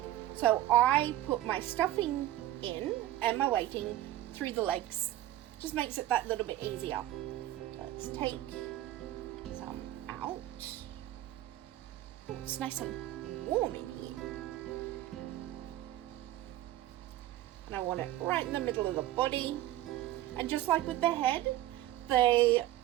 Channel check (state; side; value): quieter; left; 14.4 dB